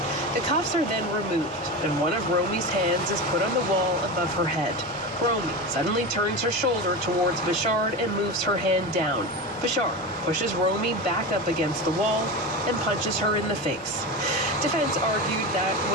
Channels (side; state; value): both; normal; correlation 0.23